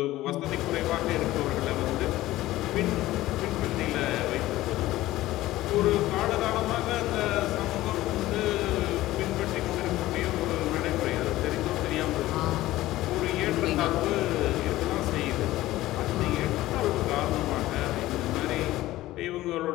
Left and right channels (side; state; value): right; quieter; 16.3 dB